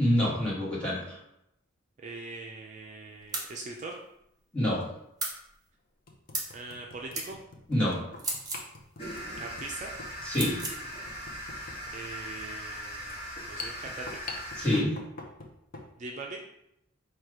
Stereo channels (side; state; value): both; normal; correlation 0.59